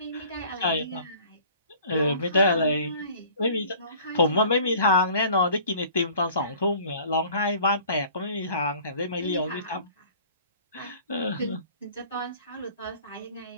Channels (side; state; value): both; inverted; correlation -0.50